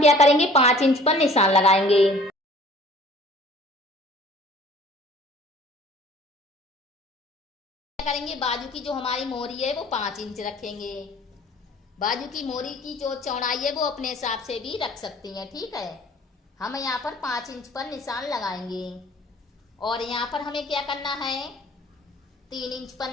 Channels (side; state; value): both; normal; correlation 0.50